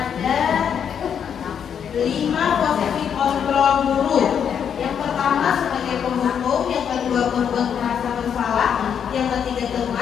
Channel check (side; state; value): right; quieter; 8.0 dB